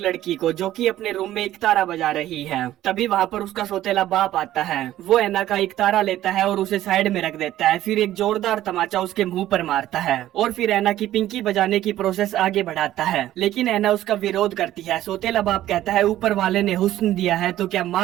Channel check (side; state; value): left; quieter; 13.6 dB